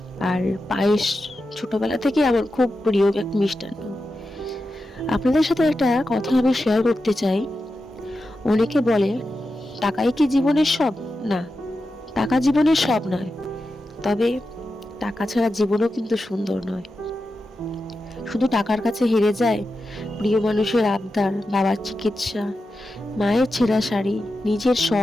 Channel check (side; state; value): both; normal; correlation 0.90